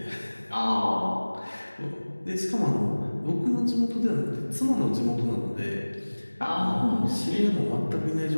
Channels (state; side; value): inverted; both; correlation -1.00